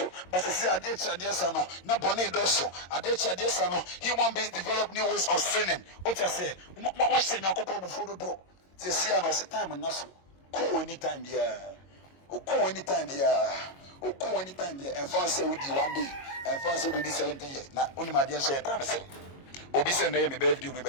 but see ade chade sa no na bone do so ade chade sa no human beings develop new ways of sinning o cha say what sin akoko before do say see am say time no so ko anytime there ko anytime there ko anytime there and for say we di one day and for say we di 17 years na only my dear say time say obi say na me birthday me be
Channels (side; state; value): right; late; 22 ms